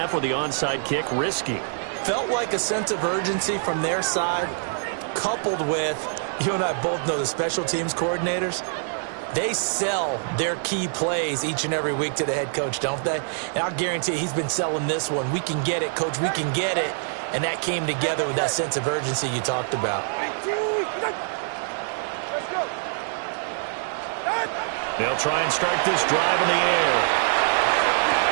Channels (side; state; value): left; silent; digital silence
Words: with the onside kick, risky. Felt like a sense of urgency from their side, coupled with, you and I both know the special teams coordinators. They sell their key plays each and every week to the head coach, don't they? And I'll guarantee he's been selling this one. We can get it, coach, we can get it. And that came together with that sense of urgency you talked about. Let's go. They'll try and start this drive in the air.